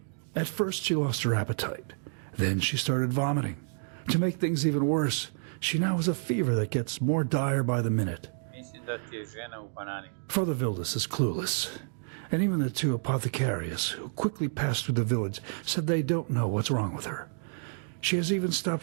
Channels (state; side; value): silent; left; digital silence